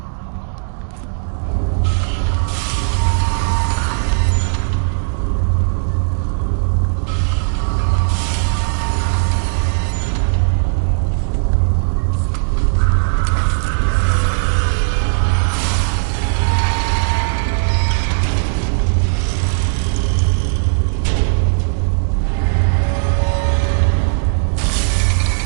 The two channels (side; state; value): left; silent; digital silence